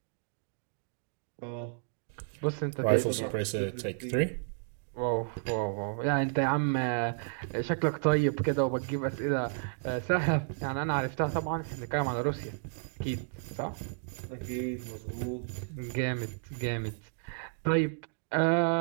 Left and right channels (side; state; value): left; silent; digital silence